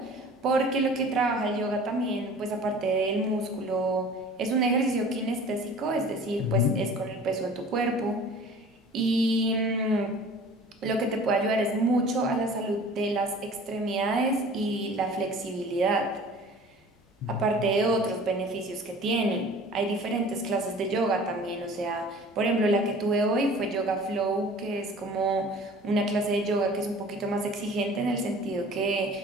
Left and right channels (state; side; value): normal; both; correlation 0.45